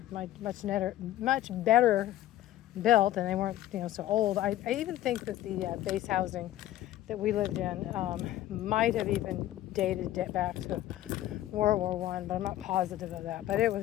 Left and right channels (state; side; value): quieter; right; 14.0 dB